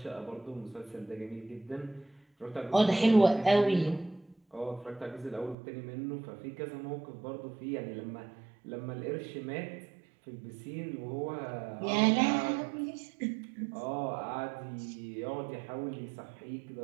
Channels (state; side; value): drops out; left; at 5.6 s